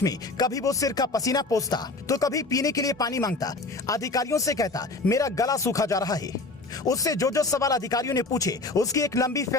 में कभी वो सिर का पसीना पोंछता तो कभी पीने के लिए पानी मांगता। अधिकारियों से कहता मेरा गला सूखा जा रहा है। उससे जो सवाल अधिकारियों ने पूछे उसकी एक लंबी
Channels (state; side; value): quieter; right; 3.3 dB